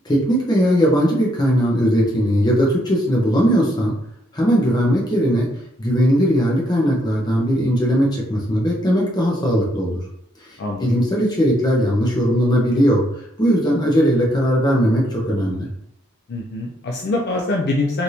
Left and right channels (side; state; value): both; normal; correlation 0.74